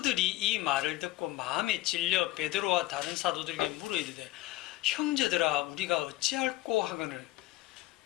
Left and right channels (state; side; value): quieter; right; 17.7 dB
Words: 이 말을 듣고 마음에 찔려 베드로와 다른 사도들에게 물어 이르되 형제들아 우리가 어찌할꼬 하거늘,